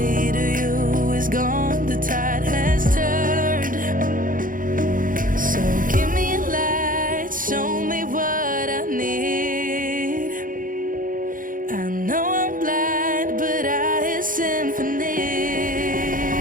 to you is gone, the tide has turned. So give me a light, show me what I need. I know I'm blind, but I hear symphonies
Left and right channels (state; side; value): late; left; 0.40 ms